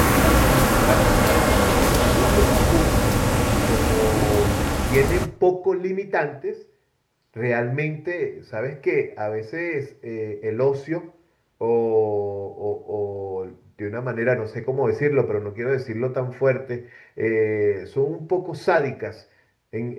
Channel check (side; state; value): both; identical; correlation 1.00